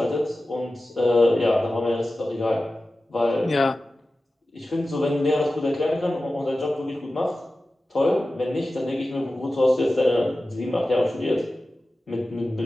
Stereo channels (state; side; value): normal; both; correlation 0.95